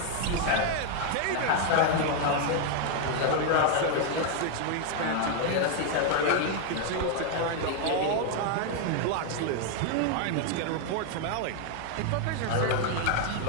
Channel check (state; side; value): different; both; correlation 0.01